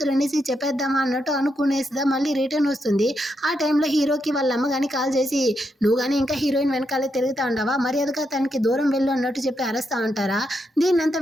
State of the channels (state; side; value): normal; both; correlation 0.81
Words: అనేసి చెప్పేద్దామా అన్నట్టు అనుకునేసిదా మళ్ళీ రిటర్న్ వస్తుంది. ఆ టైంలో హీరోకి వాళ్ళ అమ్మ కానీ కాల్ చేసి, నువ్వు కానీ ఇంకా హీరోయిన్ వెనకాలే తిరుగుతా ఉండవా, మర్యాదగా తనకి దూరం వెళ్ళు అన్నట్టు చెప్పి అరుస్తా ఉంటారా. దీన్నంతా